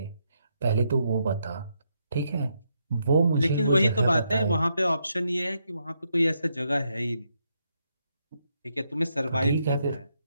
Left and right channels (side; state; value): both; inverted; correlation -0.79